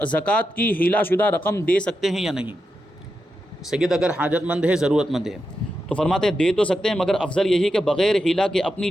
کی ہیلا شدہ رقم دے سکتے ہیں یا نہیں؟ سید اگر حاجت مند ہے، ضرورت مند ہے، تو فرماتے ہیں دے تو سکتے ہیں، مگر افضل یہی کہ بغیر ہیلا کے اپنی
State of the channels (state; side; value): normal; both; correlation 0.88